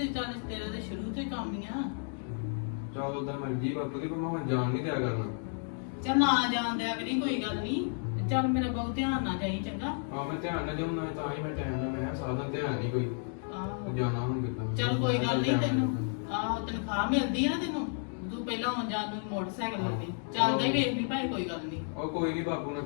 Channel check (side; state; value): right; silent; 56 dB below the other